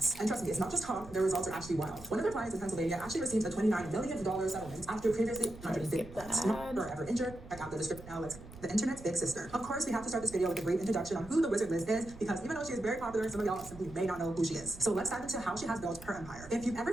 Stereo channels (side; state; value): right; noise; rumble, 17 dB below the sound